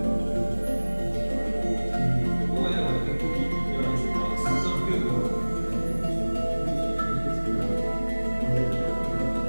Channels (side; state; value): both; inverted; correlation -1.00